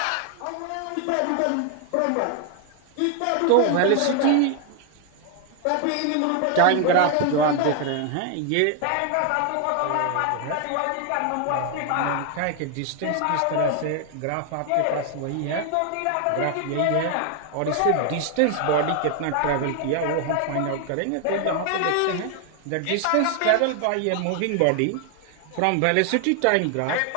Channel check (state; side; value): different; both; correlation 0.00